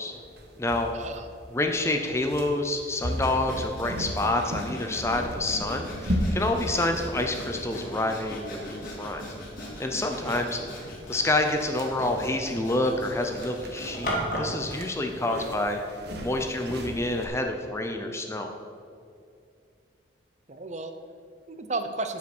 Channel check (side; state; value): both; normal; correlation 0.39